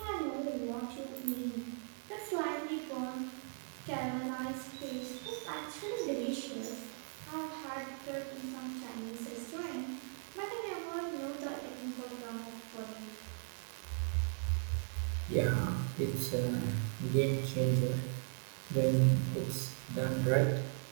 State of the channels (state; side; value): silent; left; 52 dB below the other